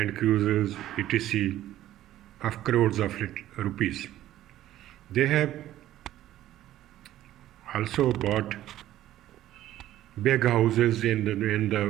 Cruisers, etc., of crores of rupees. They have also bought big houses in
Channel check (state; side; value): quieter; left; 13.5 dB